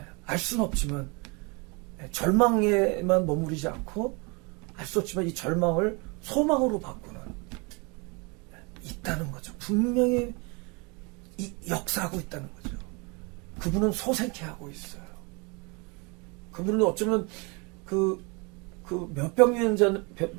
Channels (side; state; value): left; quieter; 30.0 dB